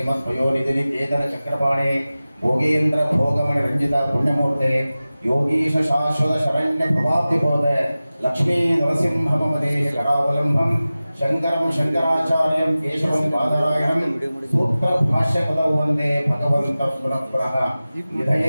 ಕೇತನ ಚಕ್ರಪಾಣೆ ಭೋಗೇಂದ್ರ ಭೋಗಮಣಿ ರಂಜಿತ ಪುಣ್ಯಮೂರ್ತೆ ಯೋಗೀಶ ಶಾಶ್ವತ ಶರಣ್ಯ ಪ್ರಭಾಬ್ಧಿಬೋಧ ಲಕ್ಷ್ಮೀ ನರಸಿಂಹಮದೇ ಕರಾವಲಂಬಂ ಶಂಕರಂ ಶಂಕರಾಚಾರ್ಯಂ ಕೇಶವಂ ಬಾದರಾಯಣಂ ಸೂತ್ರ ಭಾಷ್ಯ ಪದೌ ವಂದೇ ಭಗವಂತ ಪುನಃ ಪುನಃ.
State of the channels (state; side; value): inverted; both; correlation -0.96